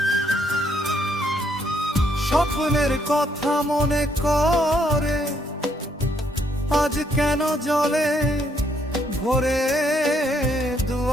স্বপ্নের কথা মনে করে আজ কেন জলে ভরে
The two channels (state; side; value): normal; both; correlation 0.71